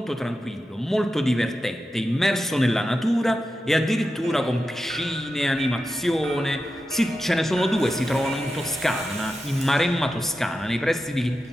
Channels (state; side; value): normal; both; correlation 0.90